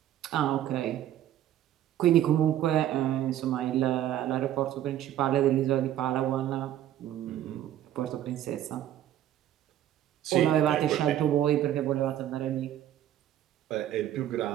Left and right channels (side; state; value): left; quieter; 12.0 dB